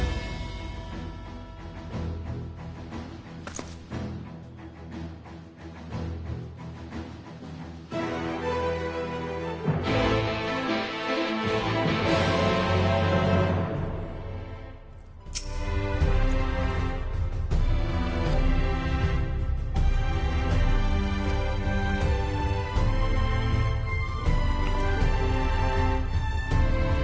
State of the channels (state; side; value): identical; both; correlation 1.00